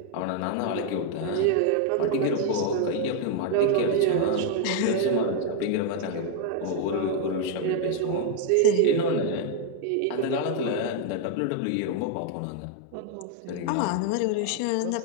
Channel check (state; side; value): different; both; correlation 0.00